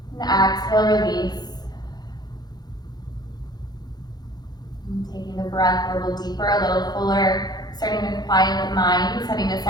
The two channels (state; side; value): late; right; 0.19 ms